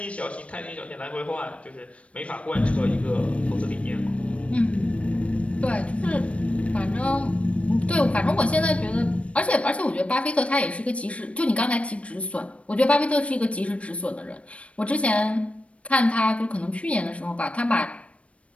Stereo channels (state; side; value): late; right; 0.063 ms